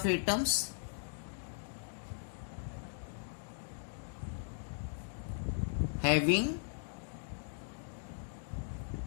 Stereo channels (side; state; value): right; silent; digital silence